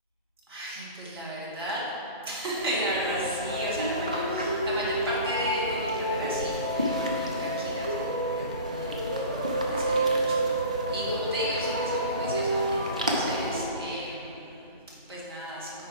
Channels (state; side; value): inverted; both; correlation -0.37